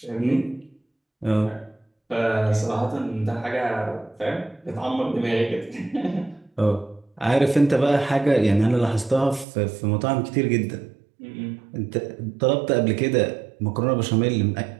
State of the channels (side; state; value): left; drops out; at 9.5 s